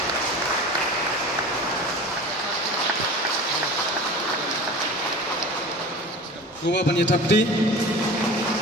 Gua banyak Tapti.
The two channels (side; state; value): both; normal; correlation 0.36